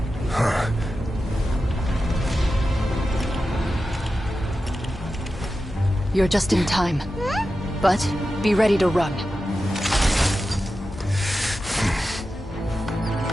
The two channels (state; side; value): normal; both; correlation 0.92